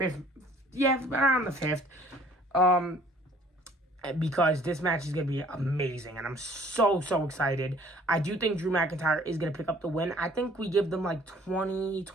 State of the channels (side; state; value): both; normal; correlation 0.55